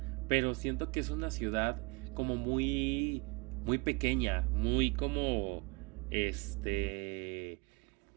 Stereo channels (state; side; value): quieter; left; 29.1 dB